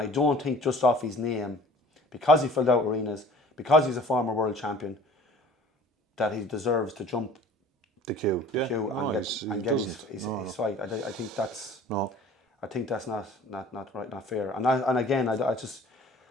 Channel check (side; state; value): both; normal; correlation 0.47